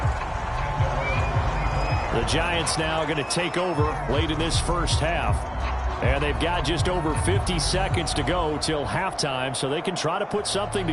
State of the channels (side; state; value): both; identical; correlation 1.00